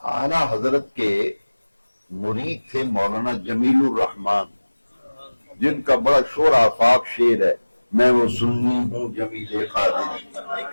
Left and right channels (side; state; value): both; inverted; correlation -1.00